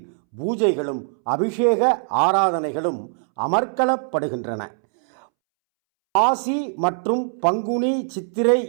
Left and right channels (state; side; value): silent; left; 64 dB below the other